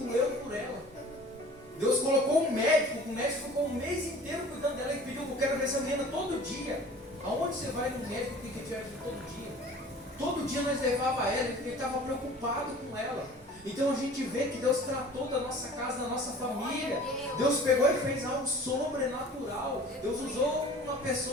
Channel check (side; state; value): both; normal; correlation 0.45